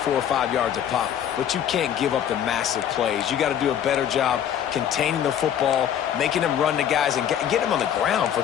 5 yards a pop. But you can't give up the massive plays. You got to do a better job containing the football, making them run to guys, and get them on the ground. For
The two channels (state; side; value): quieter; right; 9.7 dB